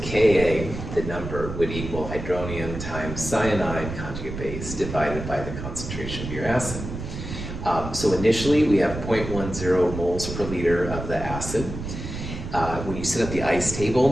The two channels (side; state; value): right; noise; rumble, 7 dB below the sound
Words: the number, would equal hydronium times cyanide conjugate base divided by the concentration of your acid. So initially, we have 0.10 moles per liter of the acid. When you set up the ice